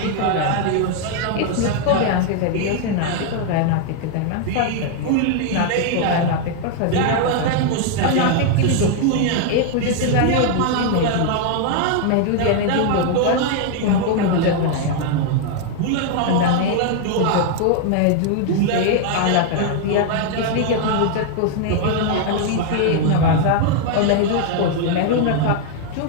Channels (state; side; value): different; both; correlation 0.00